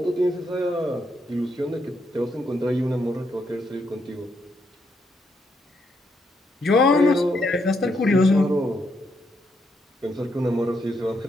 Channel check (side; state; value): both; normal; correlation 0.78